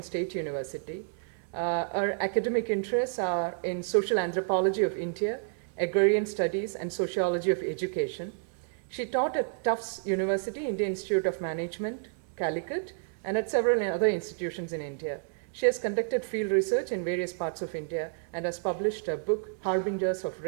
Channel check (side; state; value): left; silent; digital silence